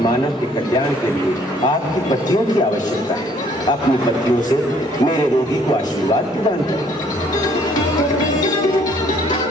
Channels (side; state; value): both; normal; correlation 0.61